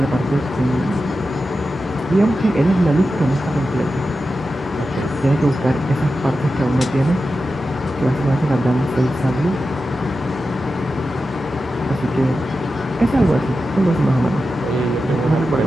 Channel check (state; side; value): normal; both; correlation 0.91